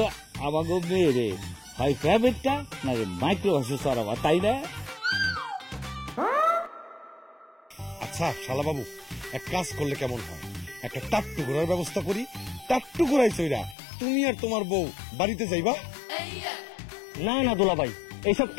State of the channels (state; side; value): drops out; right; at 13.8 s